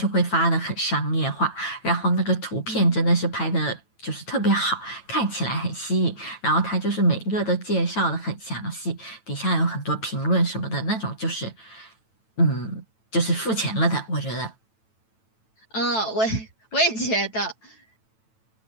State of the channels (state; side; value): late; right; 9.1 ms